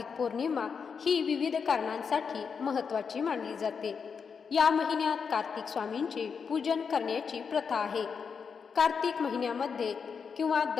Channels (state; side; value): quieter; right; 6.1 dB